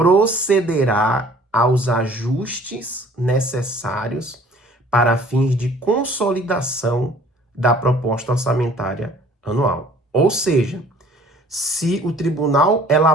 aos ajustes necessários para fins de consolidação da proposta orçamentária anual. Ou seja, se o tribunal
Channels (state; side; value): normal; both; correlation 0.53